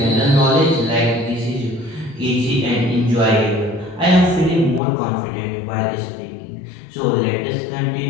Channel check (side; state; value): right; drops out; at 4.8 s